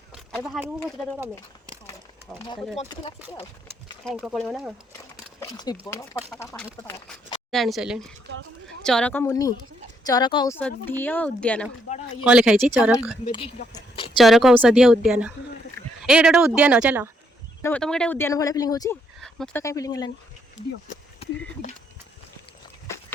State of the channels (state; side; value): normal; both; correlation 0.73